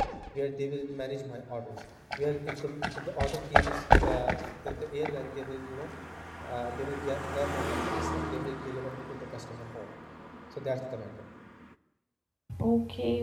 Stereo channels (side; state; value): both; identical; correlation 1.00